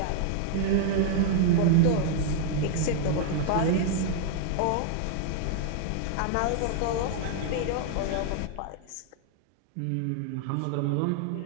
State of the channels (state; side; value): different; both; correlation 0.00